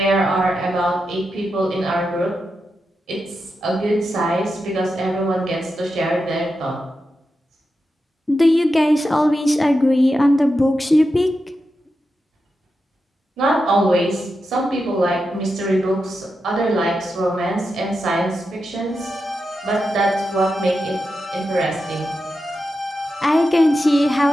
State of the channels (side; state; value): both; normal; correlation 0.88